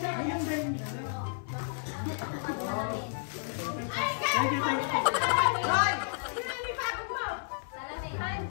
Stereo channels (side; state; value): right; silent; 57 dB below the other